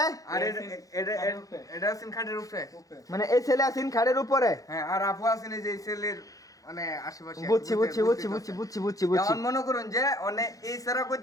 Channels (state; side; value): late; right; 0.17 ms